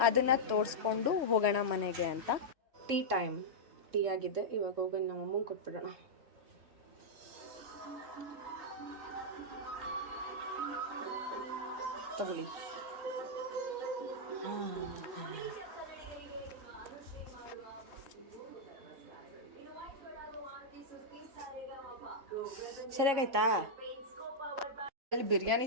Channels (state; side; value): late; left; 3.6 ms